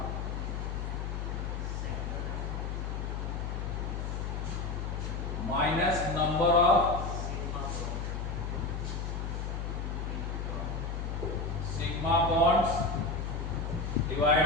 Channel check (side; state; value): left; noise; hum, 3 dB below the sound